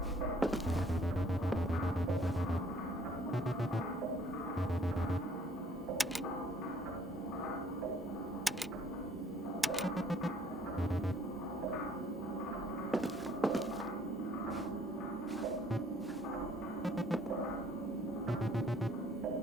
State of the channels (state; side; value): normal; both; correlation 0.60